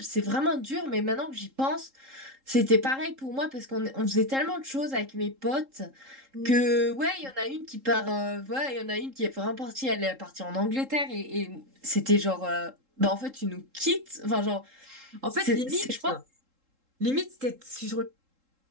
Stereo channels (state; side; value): late; left; 3.7 ms